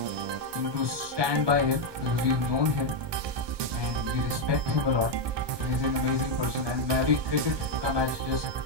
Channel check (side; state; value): left; late; 1.2 ms